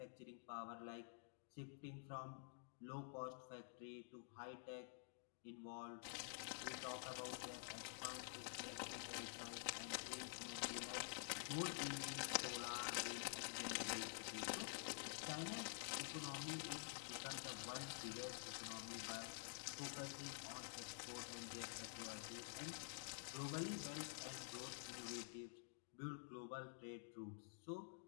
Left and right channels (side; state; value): right; silent; digital silence